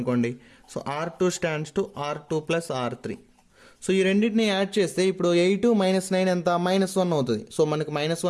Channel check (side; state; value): both; identical; correlation 1.00